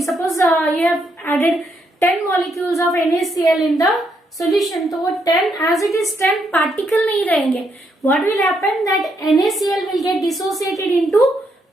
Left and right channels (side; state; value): both; normal; correlation 0.76